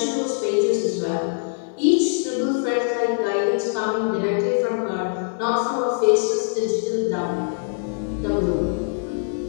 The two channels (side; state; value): right; silent; digital silence